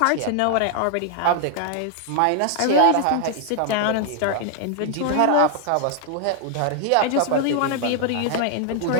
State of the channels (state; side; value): different; both; correlation 0.00